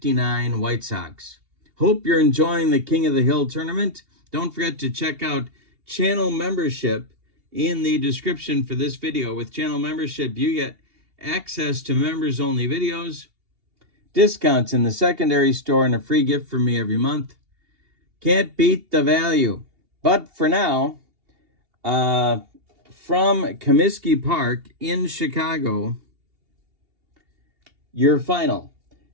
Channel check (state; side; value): late; left; 2.8 ms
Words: White Sox. Hope you're enjoying the King of the Hill tournament. Don't forget to check out channel membership in the description for this video. With channel membership, you get access to members-only videos, discounts in the secondary store, and a free gift from me every month. Can't beat the value. But for now, from Comiskey Park in Chicago, your final.